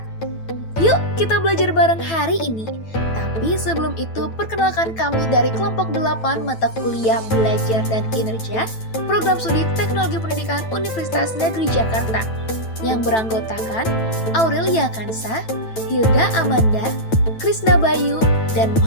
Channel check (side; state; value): right; late; 9.1 ms